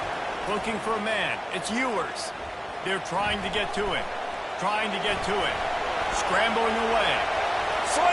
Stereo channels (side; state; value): both; identical; correlation 1.00